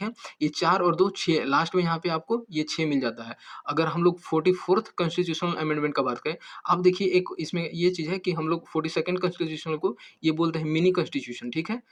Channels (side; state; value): both; identical; correlation 1.00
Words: है? ये 4 और 2 6, लास्ट में यहाँ पे आपको ये 6 मिल जाता है। अगर हम लोग 44th कॉन्स्टिट्यूशनल अमेंडमेंट का बात करें, अब देखिए एक इसमें ये चीज़ है कि हम लोग 42nd कॉन्स्टिट्यूशन को ये बोलते हैं मिनी कॉन्स्टिट्यूशन, ठीक है?